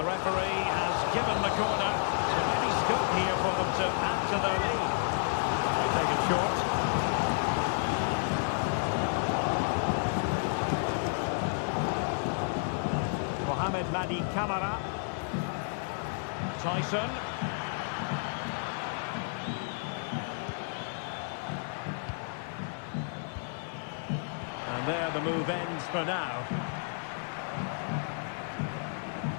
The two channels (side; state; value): right; silent; digital silence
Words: referee has given the corner. So maybe scope here for them to add to their lead. They take it short. Mohamed Madi Camara. Tyson. And there the move ends for now.